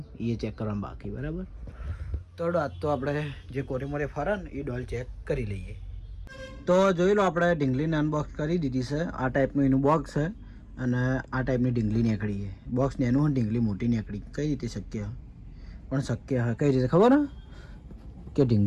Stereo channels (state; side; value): identical; both; correlation 1.00